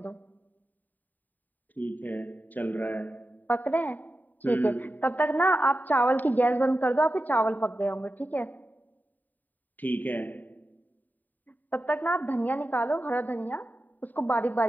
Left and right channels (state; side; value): late; right; 0.086 ms